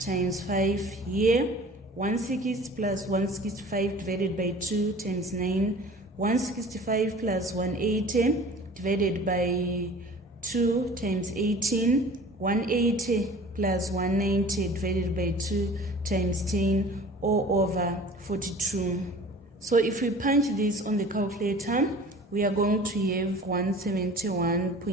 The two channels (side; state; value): both; normal; correlation 0.44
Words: 5 here. 160 plus 165 divided by 2 times 9. 165 plus 180 divided by 2 times 18. 180 plus 190 divided by 2 times 10, all over 42. So if we punch this on the calculator, we are going to have